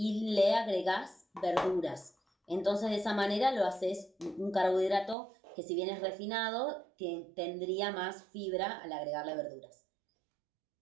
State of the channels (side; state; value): left; drops out; at 5.2 s